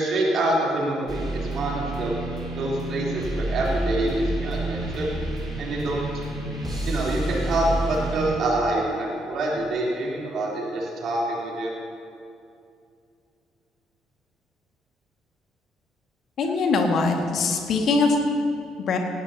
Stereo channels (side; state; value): both; normal; correlation 0.73